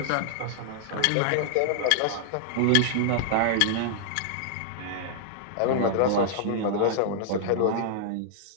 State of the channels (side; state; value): both; different; correlation -0.01